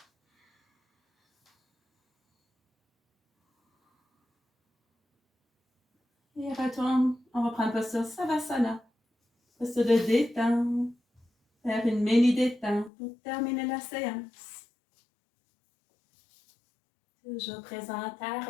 Et retourne. On va prendre posture Savasana. Posture de détente. Faire une mini détente pour terminer la séance. Toujours présent à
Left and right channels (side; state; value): right; drops out; at 12.9 s